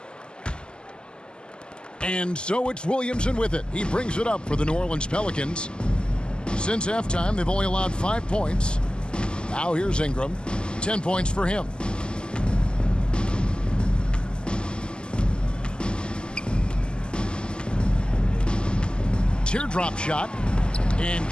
And so it's Williamson with it. He brings it up for the New Orleans Pelicans. Since halftime, they've only allowed 5 points. Now here's Ingram. 10 points for him. Teardrop shot, and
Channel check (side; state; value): right; late; 0.048 ms